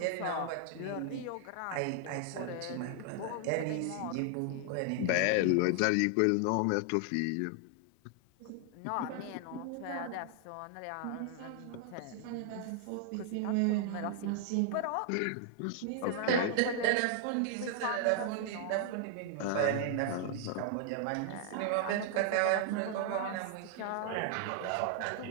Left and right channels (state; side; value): different; both; correlation 0.00